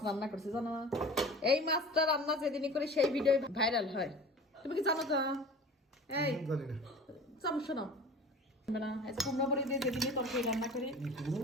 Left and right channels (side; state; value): both; normal; correlation 0.40